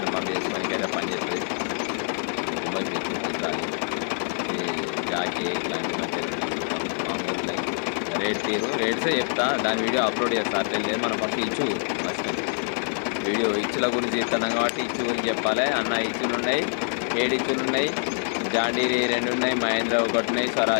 పని చేసుకోవడానికి అయితే పని చేస్తుంది. జాకీ ఇట్లాంటి మంచిగా మామూలు రేట్సే చెప్తా, దాని వీడియో అప్లోడ్ చేస్తా. అట్లేం లేదు. మనం ఫస్ట్ ఇచ్చు వీడియో ఇచ్చుల గురించి చెప్తున్నాం కాబట్టి ఇచ్చు గురించి చెప్పాలి అన్న. ఇచ్చులు ఉన్నాయి, 7 ఇచ్చులు ఉన్నాయి, జాండీరి 2 ఉన్నాయి, మహేంద్ర 1 ఉన్నాయి,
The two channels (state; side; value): silent; right; 60 dB below the other